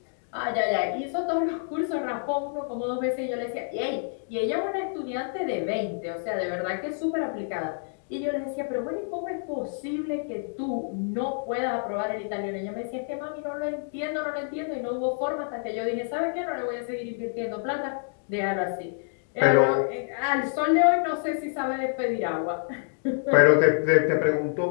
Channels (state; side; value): silent; right; digital silence